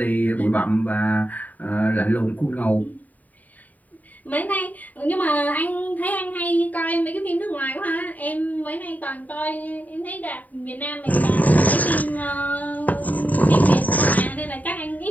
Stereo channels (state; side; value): late; right; 0.076 ms